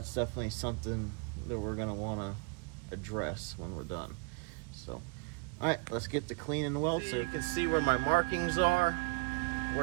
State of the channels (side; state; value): left; quieter; 29.7 dB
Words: definitely something that we're gonna wanna address when we're done. So, all right, let's get to cleaning the weld so you can see where my markings are,